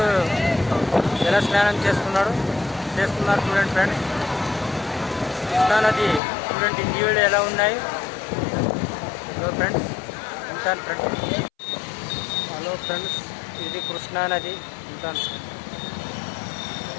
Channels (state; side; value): drops out; right; at 6.2 s